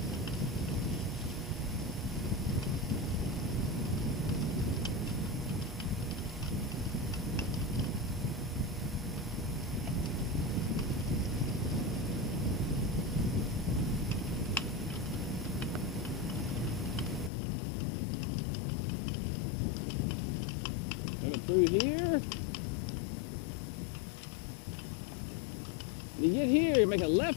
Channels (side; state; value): right; drops out; at 17.3 s